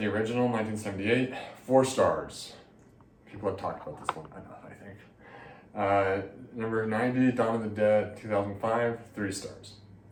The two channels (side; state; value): both; identical; correlation 1.00